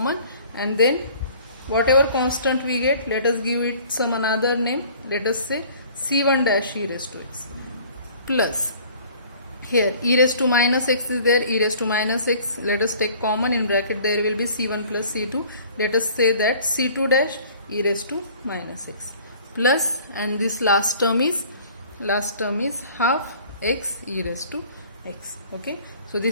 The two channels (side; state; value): both; inverted; correlation -0.51